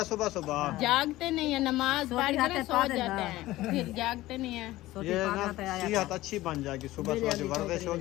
सुबह सुबह। जागते नहीं है, नमाज पढ़ कर सो जाते हैं, फिर जागते नहीं है। ये ना सेहत अच्छी बन जाएगी, सुबह सुबह जो वर्जिश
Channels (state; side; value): quieter; right; 17.0 dB